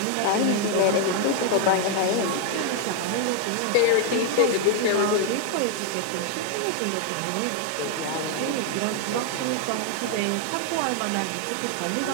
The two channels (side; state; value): both; different; correlation 0.00